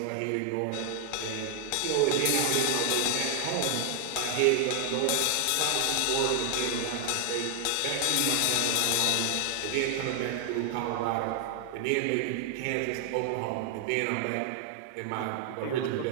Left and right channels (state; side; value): different; both; correlation 0.00